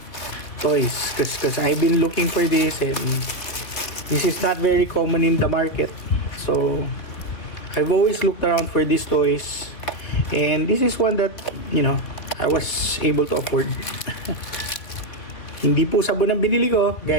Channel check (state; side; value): late; right; 3.1 ms